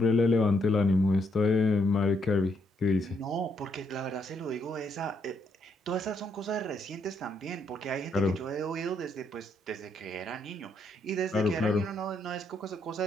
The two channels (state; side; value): normal; both; correlation 0.74